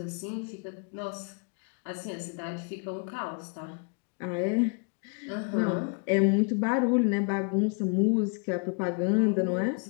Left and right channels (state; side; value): quieter; right; 37.8 dB